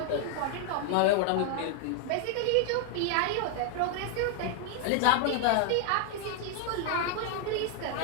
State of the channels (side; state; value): both; different; correlation 0.00